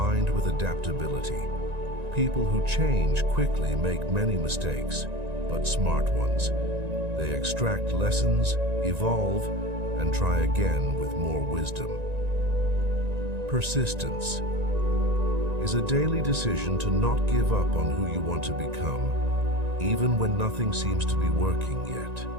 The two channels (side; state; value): left; late; 1.9 ms